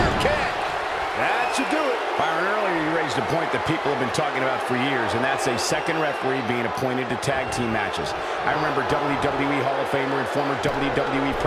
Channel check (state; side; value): identical; both; correlation 1.00